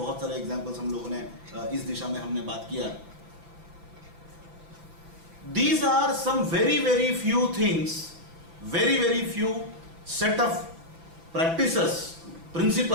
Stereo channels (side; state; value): left; late; 6.0 ms